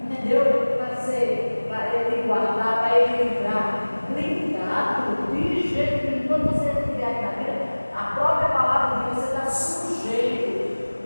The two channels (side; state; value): both; inverted; correlation -1.00